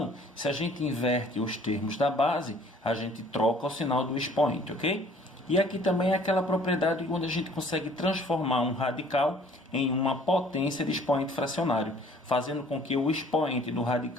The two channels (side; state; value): both; normal; correlation 0.55